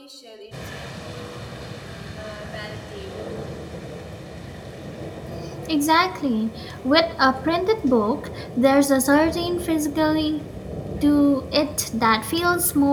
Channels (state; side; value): identical; both; correlation 1.00